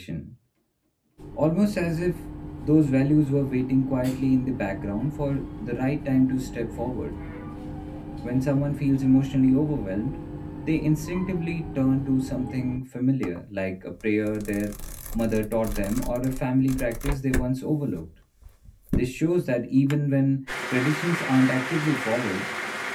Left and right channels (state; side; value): identical; both; correlation 1.00